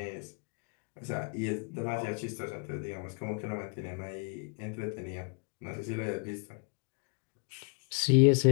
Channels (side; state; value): right; quieter; 37.0 dB